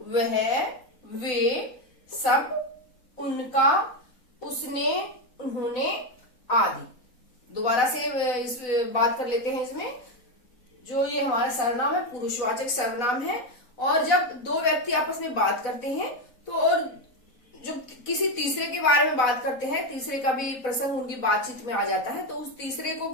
वे, सब, उनका, उसने, उन्होंने आदि। दोबारा से इस बात कर लेते हैं। इसमें जो ये हमारा सर्वनाम है पुरुषवाचक सर्वनाम है, और जब 2 व्यक्ति आपस में बात करते हैं तो और जब किसी तीसरे के बारे में बात करते हैं, तीसरे का भी प्रसंग उनकी बातचीत में आ जाता है, तो उस तीसरे को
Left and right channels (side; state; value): right; late; 4.0 ms